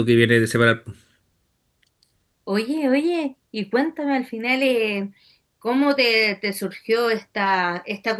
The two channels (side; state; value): both; identical; correlation 1.00